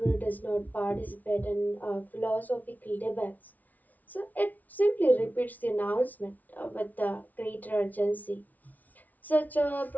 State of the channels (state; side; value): late; right; 0.077 ms